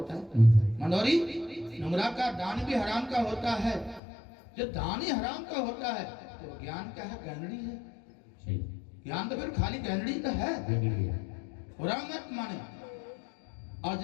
है मनोरी, नुंगरा का दान भी हराम का होता है। जब दान ही हराम का होता है तो ज्ञान क्या है? गहनड़ी है। ज्ञान तो फिर खाली गहनड़ी तो है, बुरा मत माने। और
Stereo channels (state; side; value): drops out; right; at 4.0 s